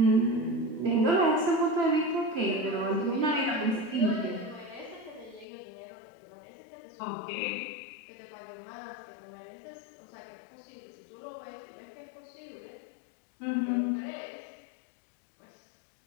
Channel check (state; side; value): drops out; right; at 5.5 s